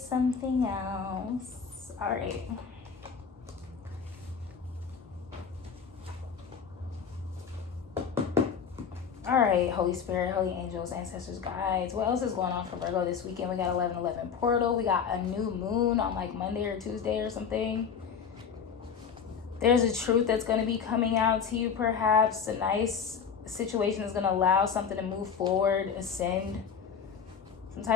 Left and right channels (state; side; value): quieter; right; 6.6 dB